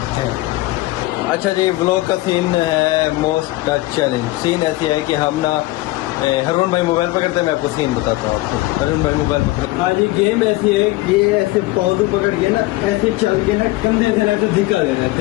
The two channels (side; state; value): right; quieter; 19.2 dB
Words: अच्छा जी, व्लॉग का सीन मोस्ट का चैलेंज सीन ऐसे है कि हम ना हरून भाई मोबाइल पकड़ते हैं, मैं आपको सीन बताता हूँ आपको। हरून भाई मोबाइल पकड़, हाँ जी, गेम ऐसी है कि ये ऐसे पौधे पकड़ के ना ऐसे चल के ना कंधे से ऐसे धिक्का दे रहे हैं।